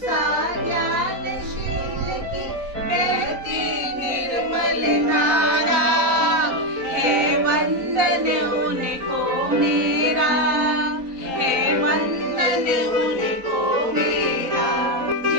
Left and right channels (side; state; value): left; late; 3.9 ms